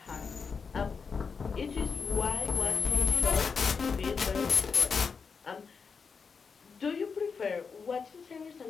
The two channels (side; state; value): right; quieter; 5.5 dB